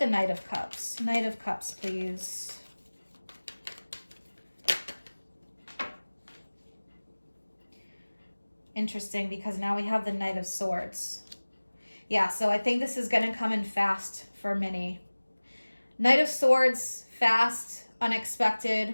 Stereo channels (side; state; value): both; inverted; correlation -1.00